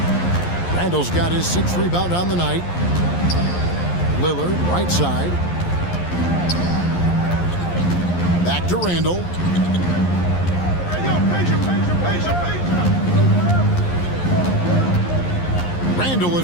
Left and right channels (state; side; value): late; right; 11 ms